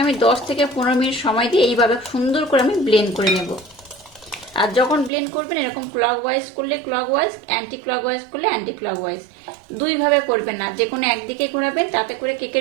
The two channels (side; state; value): left; drops out; at 5.1 s